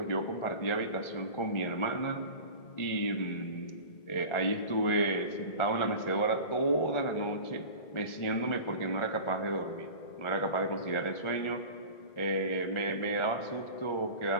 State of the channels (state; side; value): late; right; 1.4 ms